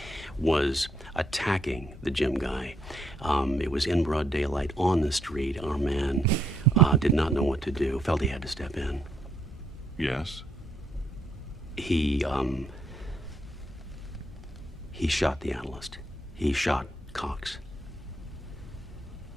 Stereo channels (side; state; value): both; normal; correlation 0.74